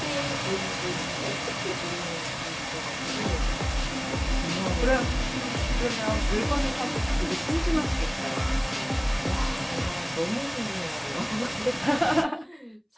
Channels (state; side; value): identical; both; correlation 1.00